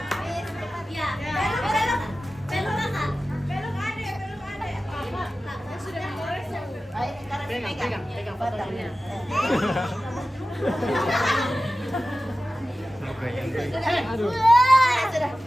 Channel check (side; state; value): both; normal; correlation 0.95